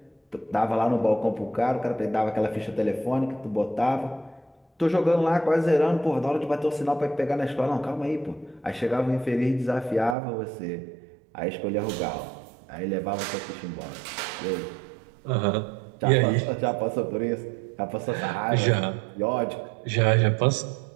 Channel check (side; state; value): left; drops out; at 10.2 s